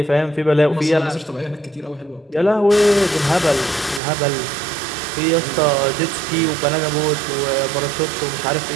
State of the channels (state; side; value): drops out; left; at 4.0 s